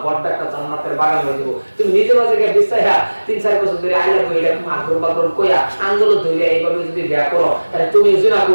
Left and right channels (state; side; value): inverted; both; correlation -1.00